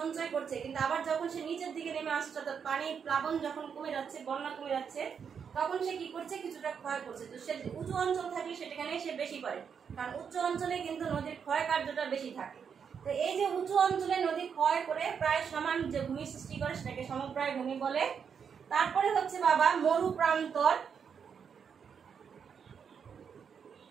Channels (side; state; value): left; quieter; 6.9 dB